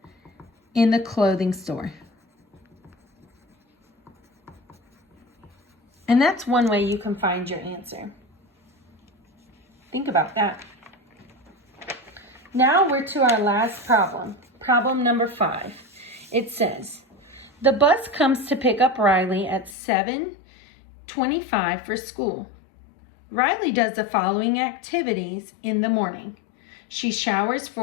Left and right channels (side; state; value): right; drops out; at 19.8 s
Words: in the clothing store. And that's one way you can find your answer. Think about that. Now we're to our last problem. Problem number 5. It says, the bus comes to pick up Riley at 7:25 for school. Riley does the following activities in the morning. She showers